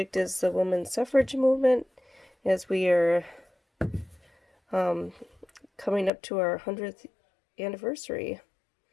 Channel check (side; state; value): right; drops out; at 6.1 s